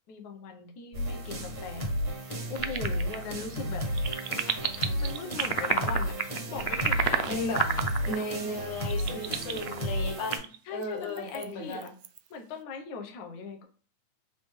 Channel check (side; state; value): right; late; 9.1 ms